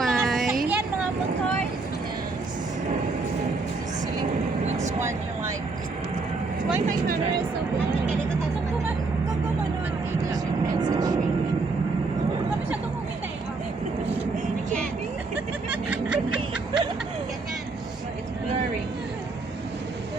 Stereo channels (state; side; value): quieter; left; 3.8 dB